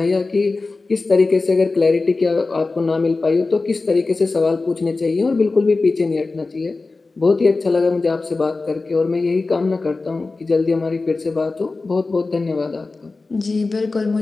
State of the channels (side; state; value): right; quieter; 3.7 dB